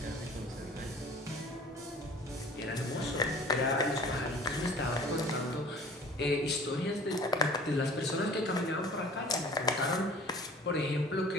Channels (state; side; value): normal; both; correlation 0.47